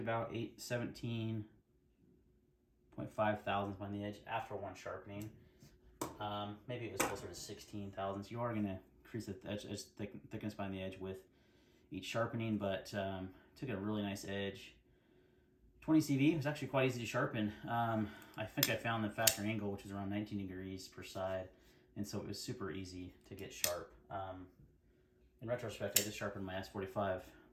17.5 thousandths on the edge after one sharpening. Maybe it was closer to 16 thousandths. You are going to increase the edge, thickness behind the edge with each sharpening, but took a really nice edge. 20 CV was actually quite easy to sharpen. I think I found the factory angle, which is around 19 degrees per side, and so it was super easy to get sharp. In retrospect, I just sharpened my S45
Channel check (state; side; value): identical; both; correlation 1.00